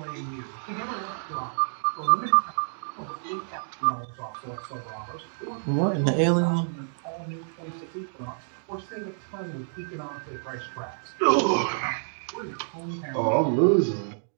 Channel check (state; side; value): silent; left; digital silence